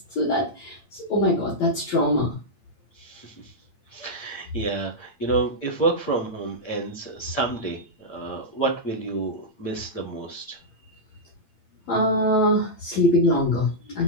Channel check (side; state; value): right; late; 8.7 ms